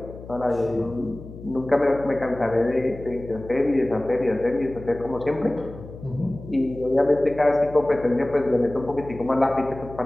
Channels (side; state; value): left; noise; hum, 15 dB below the sound